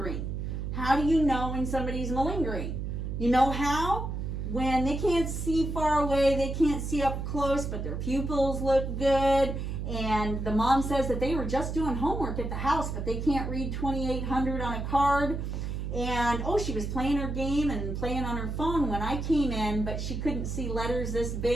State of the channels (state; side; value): noise; right; hum, 4 dB below the sound